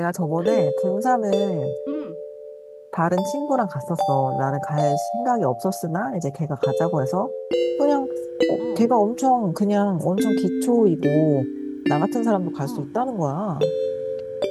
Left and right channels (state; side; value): identical; both; correlation 1.00